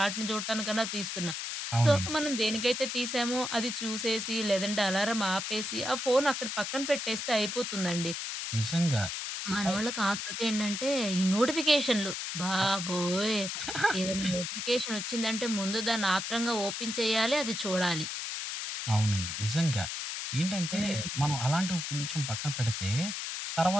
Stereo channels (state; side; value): noise; left; hiss, 4 dB below the sound